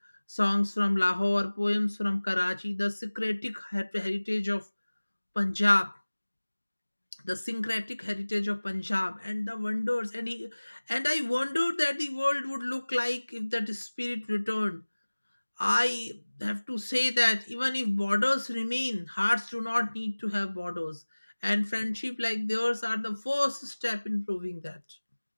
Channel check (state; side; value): inverted; both; correlation -1.00